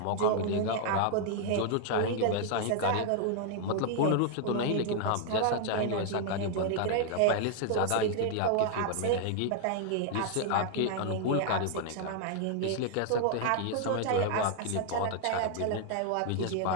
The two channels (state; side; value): different; both; correlation 0.00